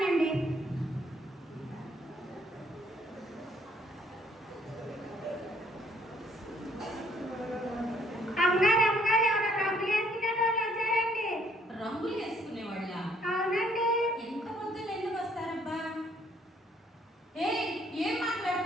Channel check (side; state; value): both; normal; correlation 0.65